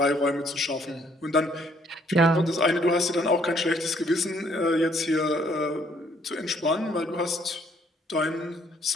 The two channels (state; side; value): normal; both; correlation 0.65